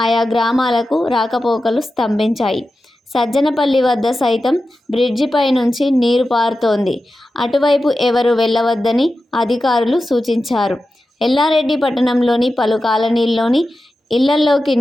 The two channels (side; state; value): both; normal; correlation 0.92